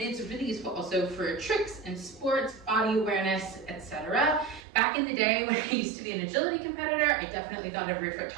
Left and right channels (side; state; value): left; drops out; at 4.6 s